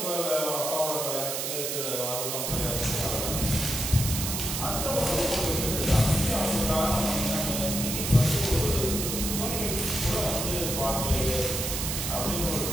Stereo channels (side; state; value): right; noise; hiss, 2 dB below the sound